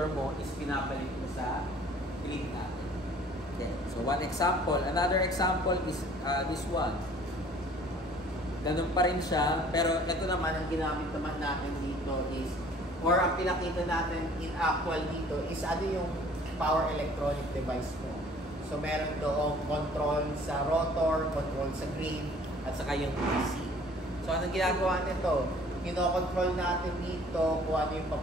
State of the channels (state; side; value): normal; both; correlation 0.53